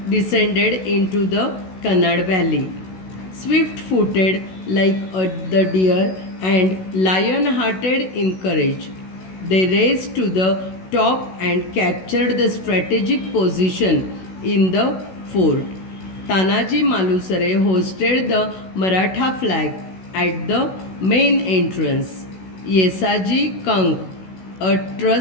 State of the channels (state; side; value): late; right; 16 ms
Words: descended into the Kannad valley. Swift-footed like the deer and lion-hearted in courage, they raced to the top and captured the strategic position in the fort. Tanaji Malusare hosted the Maratha flag at the main entrance. Yesaji Kank, a